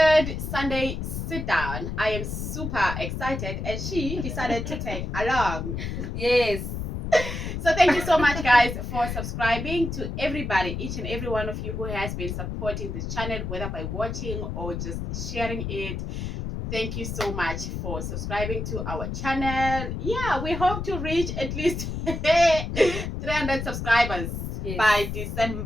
Sunday sit down. I am super excited and she decided to take along. Yes. So thank you so much guys for subscribing, to everybody, each and every one of you who has been supporting this channel, whether by watching or just sharing it. Thank you so much for subscribing to our channel. Yeah, we hope to reach at least 300 subscribers by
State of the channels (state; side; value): noise; left; rumble, 4 dB below the sound